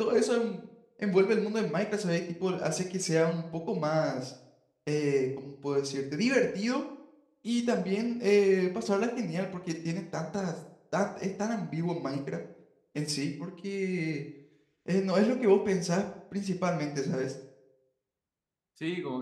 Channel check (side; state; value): both; identical; correlation 1.00